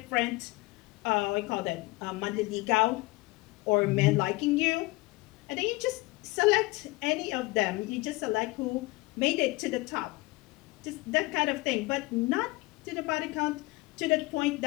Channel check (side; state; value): right; quieter; 22.2 dB